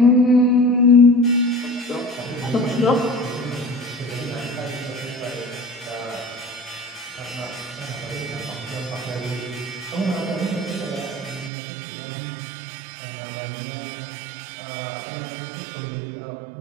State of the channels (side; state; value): left; drops out; at 11.5 s